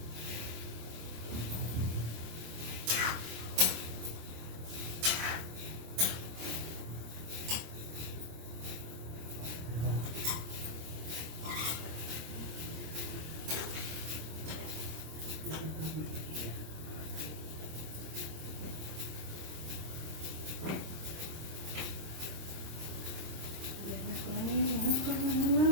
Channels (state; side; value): late; left; 26 ms